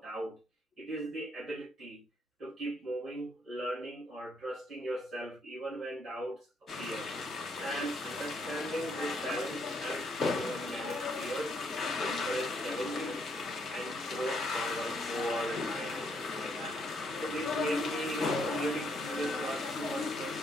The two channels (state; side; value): normal; both; correlation 0.72